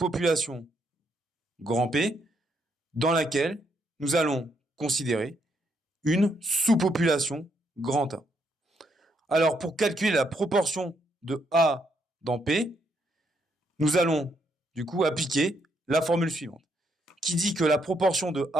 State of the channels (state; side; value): normal; both; correlation 0.75